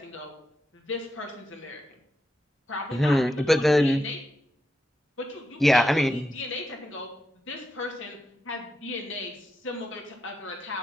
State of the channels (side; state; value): both; normal; correlation 0.86